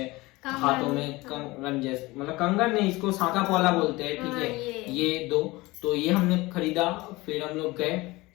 कंगन, हाथों में कंगन जैसे, मतलब कंगन नहीं, इसको साका पौला बोलते हैं, ठीक हाँ, है, ये दो, तो ये हमने खरीदा। फिर हम लोग गए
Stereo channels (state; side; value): quieter; right; 21.3 dB